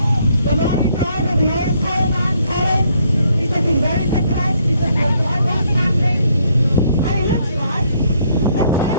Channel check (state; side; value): inverted; both; correlation -0.68